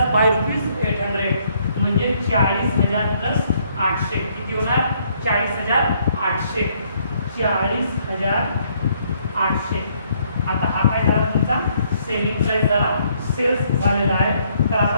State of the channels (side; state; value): both; inverted; correlation -0.68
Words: by ₹800. म्हणजे 40,000 प्लस 800 किती होणार 40,800. 40,800. आता हा काय झाला तुमचा सेलिंग प्राइस झाला सेल्स झालेला आहे. तर आता